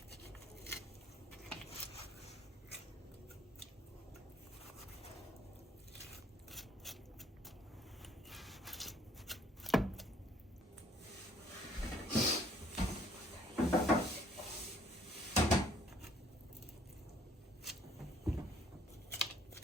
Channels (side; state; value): both; normal; correlation 0.60